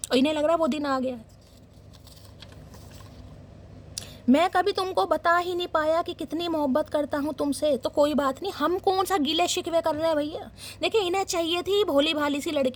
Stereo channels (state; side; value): identical; both; correlation 1.00